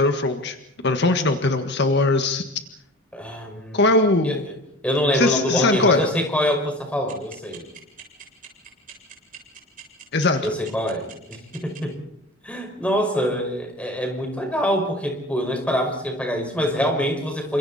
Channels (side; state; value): both; normal; correlation 0.38